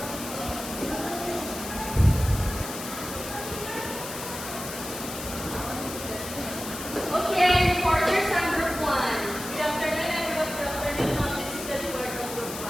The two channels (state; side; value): noise; left; hiss, 9 dB below the sound